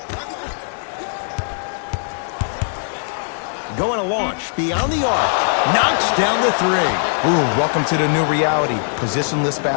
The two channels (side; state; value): right; silent; digital silence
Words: Going to launch beyond the arc. Knocks down the 3. Ooh, welcome to the new reality. Positionless